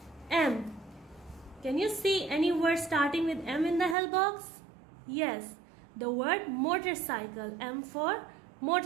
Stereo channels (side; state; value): left; drops out; at 4.0 s